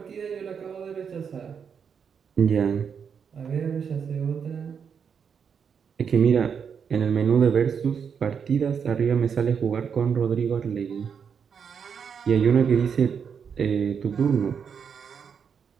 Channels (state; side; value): quieter; left; 6.9 dB